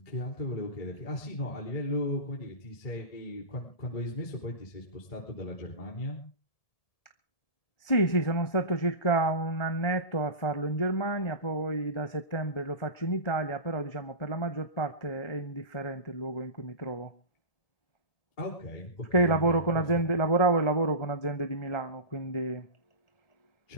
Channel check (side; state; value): right; late; 1.7 ms